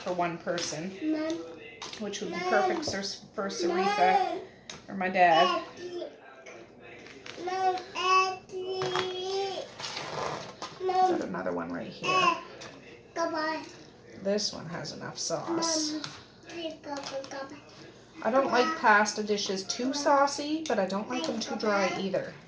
for one person, which would be perfect for Saritha or my dad. Got another one right here. This one has enough sauce. I don't like pasta dishes too saucy, but I don't like them too dry either.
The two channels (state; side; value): identical; both; correlation 1.00